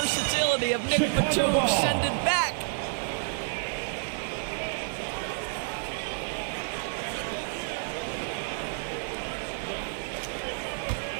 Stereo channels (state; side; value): silent; left; 58 dB below the other